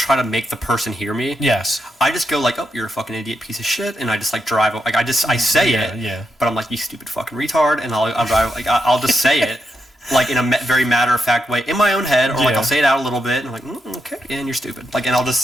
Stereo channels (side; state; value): both; normal; correlation 0.84